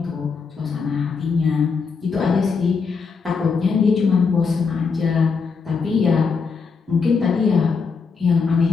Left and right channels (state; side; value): quieter; right; 5.2 dB